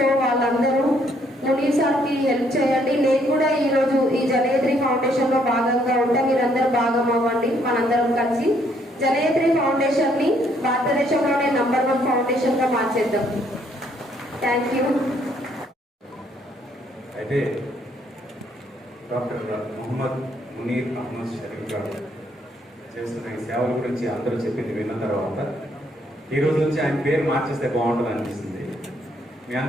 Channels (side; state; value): both; normal; correlation 0.69